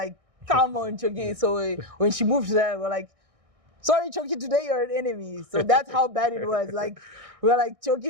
come on, Choki. So when she moved there, we're like, sorry, Choki, today you're an enemy. So that's how bad it was. Like, we were like,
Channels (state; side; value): late; left; 1.6 ms